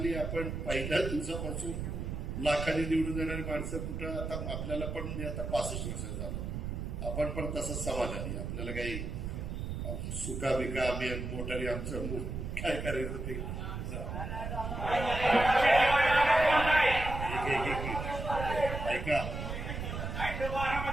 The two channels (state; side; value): noise; right; rumble, 4 dB below the sound